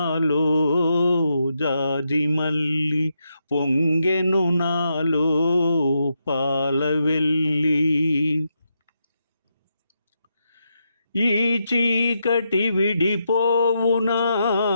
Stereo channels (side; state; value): both; inverted; correlation -0.83